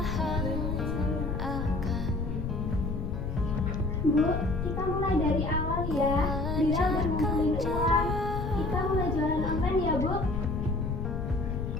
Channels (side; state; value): left; noise; rumble, 3 dB below the sound